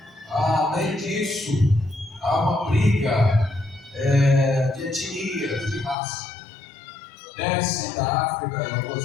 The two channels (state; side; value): drops out; right; at 6.0 s